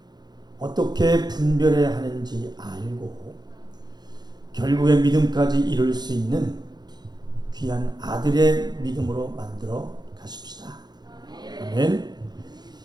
어떻게 분별해야 하는지 알고 결국에 믿음까지 이룰 수 있는 귀한 아들의 믿음으로 만들어 가십시다. 아멘.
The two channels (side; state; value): left; late; 0.20 ms